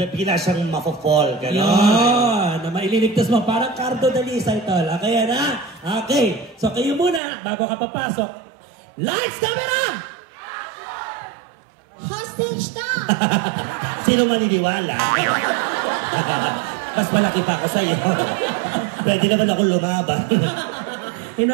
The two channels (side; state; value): left; drops out; at 7.2 s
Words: siyang mafo-fall, gano'n. Yun, na maililigtas mo. Parang Cardo Dalisay, tol. Okay, yan, ha? Okay. So, kayo muna, bago ka papasok. Lights, camera! Hostage na! Sino maniniwala? Mas malaki pa ako sa'yo. Pwede naman ako lumaban.